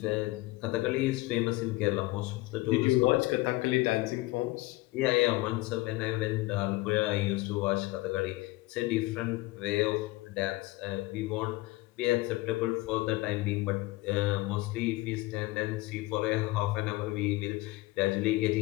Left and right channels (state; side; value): quieter; right; 20.3 dB